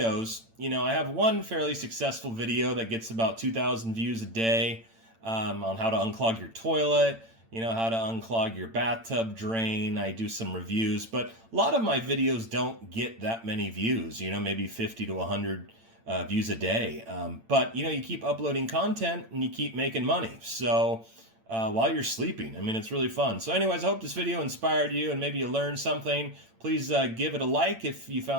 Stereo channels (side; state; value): left; late; 8.9 ms